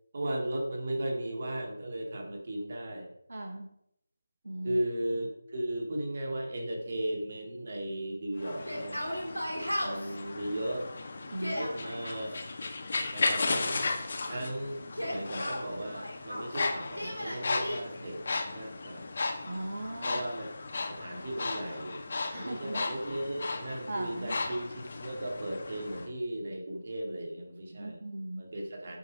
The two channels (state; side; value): inverted; both; correlation -0.93